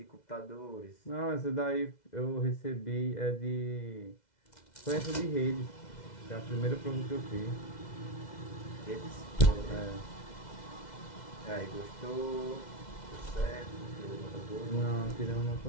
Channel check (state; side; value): late; right; 2.0 ms